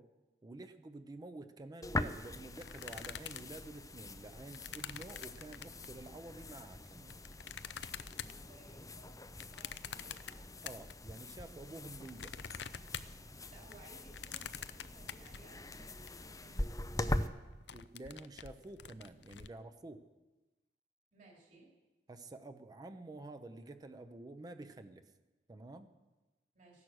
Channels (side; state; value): both; normal; correlation 0.62